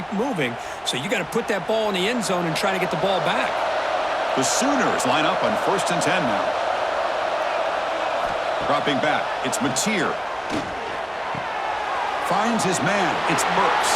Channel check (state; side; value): identical; both; correlation 1.00